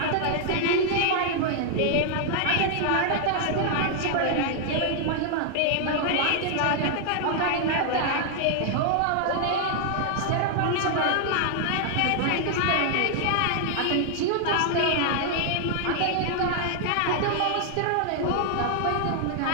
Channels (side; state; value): both; different; correlation 0.00